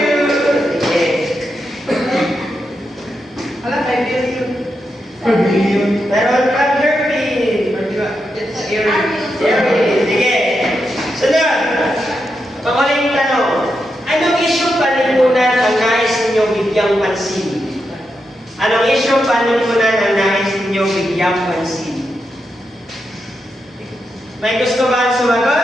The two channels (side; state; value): both; normal; correlation 0.85